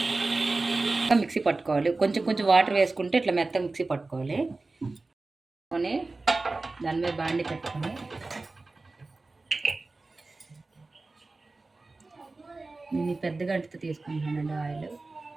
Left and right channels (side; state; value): left; quieter; 3.4 dB